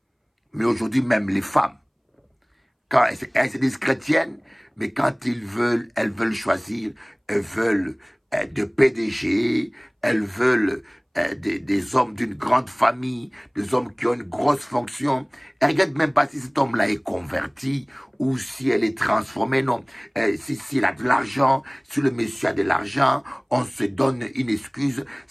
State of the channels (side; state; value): both; identical; correlation 1.00